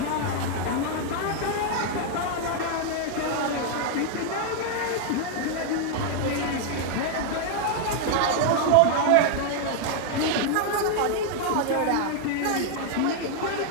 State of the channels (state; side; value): different; both; correlation 0.00